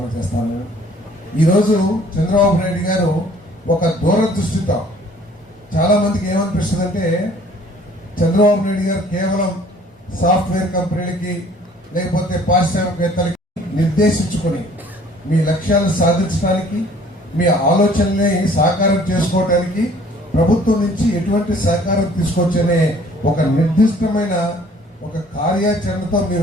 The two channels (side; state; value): both; normal; correlation 0.55